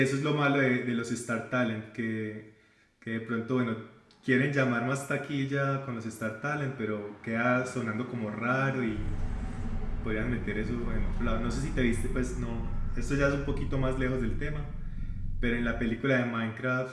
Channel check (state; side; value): identical; both; correlation 1.00